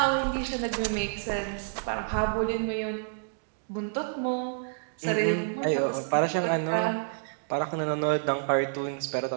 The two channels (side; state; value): left; silent; digital silence